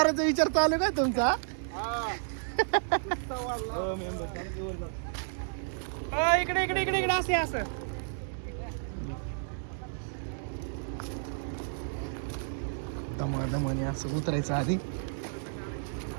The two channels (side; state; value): left; silent; digital silence